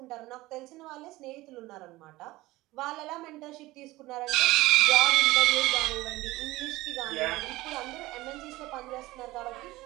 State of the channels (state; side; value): quieter; left; 18.8 dB